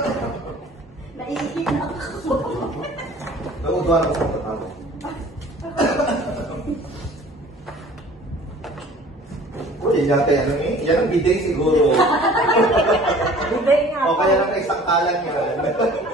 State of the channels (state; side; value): normal; both; correlation 0.48